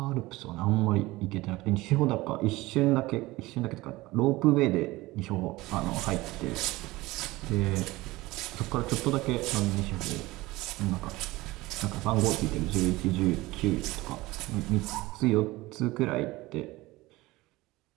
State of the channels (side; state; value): left; quieter; 19.7 dB